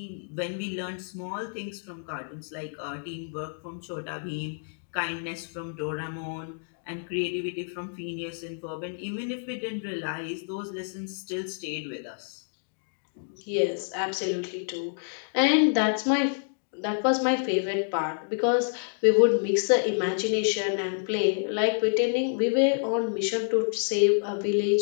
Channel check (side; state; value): right; silent; digital silence